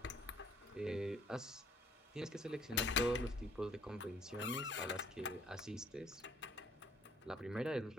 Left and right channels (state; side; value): normal; both; correlation 0.61